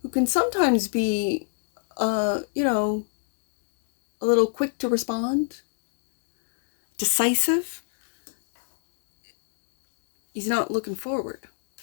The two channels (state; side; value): silent; right; digital silence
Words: who can sometimes be, a little quick to respond, decisive, he's not looking forward.